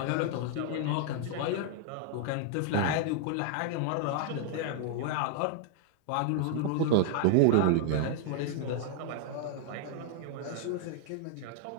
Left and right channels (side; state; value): both; different; correlation -0.01